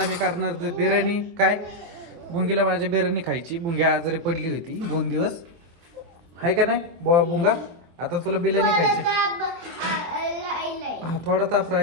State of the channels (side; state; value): left; late; 24 ms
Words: करणार बिर्याणी. काय बुंगीला माझ्या बिर्याणी खायची. बुंग्या आजारी पडली होती 2 दिवस, आहे का नाही बुंगा? आता तुला बिर्याणी खायची. हा, थोडा ताप